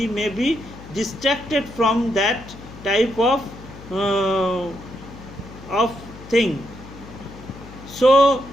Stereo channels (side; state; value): left; noise; hum, 16 dB below the sound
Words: may be distracted from that type of thing. So